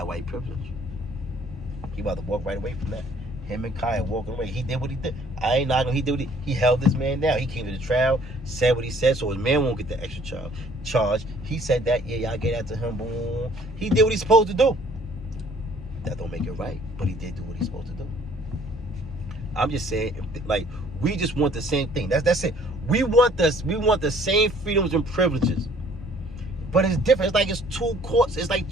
why he privileged. He about to walk right away from that. Him and Kyle walking away. He did what he did. I ain't knocking. He did what he held this man down. He came to the trial, said what he said, so his man won't get the extra charge. He said that, yeah, y'all get that to him. Boom. He did what he's supposed to do. That don't make it right, but he did do what he's supposed to do. I'm just saying, like, we just want the same thing. That's it. We want the same freedoms and privileges. But it's different. It's like it's 2 courts. It's like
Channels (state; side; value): normal; both; correlation 0.58